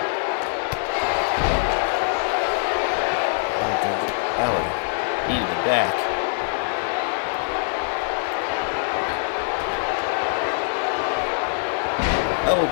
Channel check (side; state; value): right; silent; 63 dB below the other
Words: Balor, knee to the back.